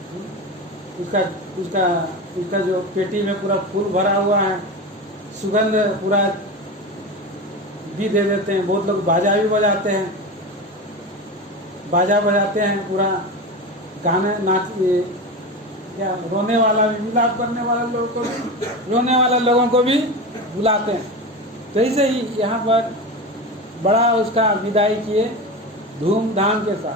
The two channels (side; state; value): both; normal; correlation 0.24